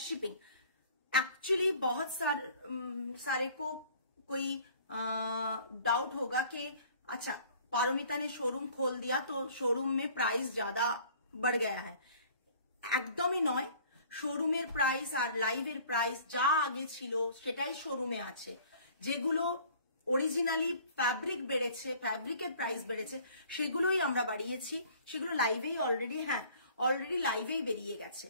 shipping. Actually बहुत सारे को कोई डाउट होगा कि अच्छा पारोमिता ने शोरूम खोल दिया तो शोरूम में प्राइस ज्यादा बढ़ गया है। একদমই নয়, শোরুমের প্রাইস আর লাইভের প্রাইস যা আগে ছিল সেটাই শোরুমে আছে। যেগুলো অরিজিনালি ফ্যাব্রিক বেড়েছে, ফ্যাব্রিকের প্রাইস বেড়েছে, সেগুলোই আমরা বাড়িয়েছি। সেগুলো লাইভেই অলরেডি, হ্যাঁ অলরেডি লাইভেই বেরিয়ে গেছে,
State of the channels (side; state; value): both; inverted; correlation -0.52